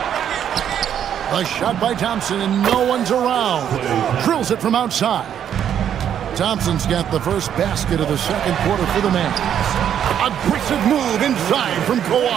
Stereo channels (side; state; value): left; quieter; 9.4 dB